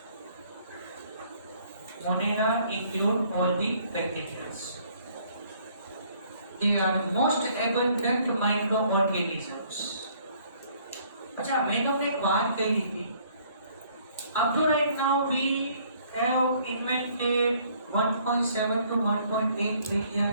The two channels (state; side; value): inverted; both; correlation -0.62